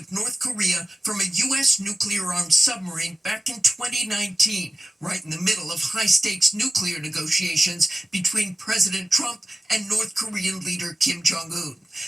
North Korea from a U.S. nuclear-armed submarine back in 2019, right in the middle of high-stakes nuclear negotiations between President Trump and North Korean leader Kim Jong-un.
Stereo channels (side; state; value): both; normal; correlation 0.96